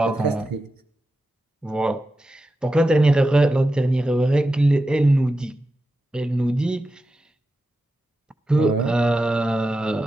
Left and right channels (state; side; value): normal; both; correlation 0.91